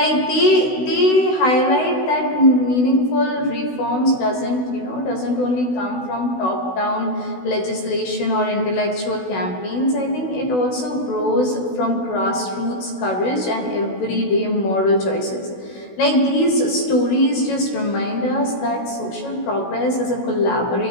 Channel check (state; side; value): late; right; 16 ms